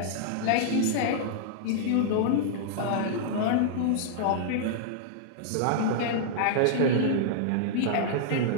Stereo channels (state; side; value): different; both; correlation -0.01